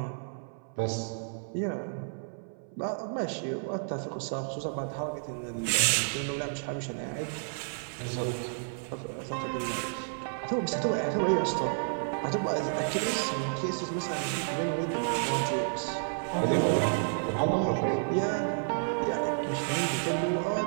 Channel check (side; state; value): left; silent; 57 dB below the other